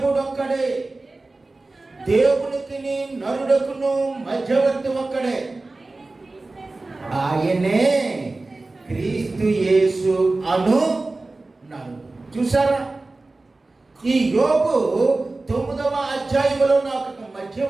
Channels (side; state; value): left; quieter; 3.2 dB